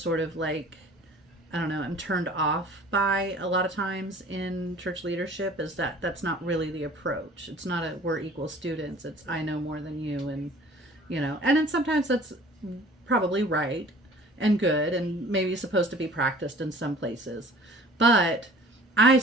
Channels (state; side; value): normal; both; correlation 0.48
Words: sort of like, I don't know, I'm turned off by a lot of times in church leadership, is that that's not really the approach. It's not a we're equal students. It's I know more than you, and and then sometimes that's probably right and good and maybe supposed to be practiced in some places. But I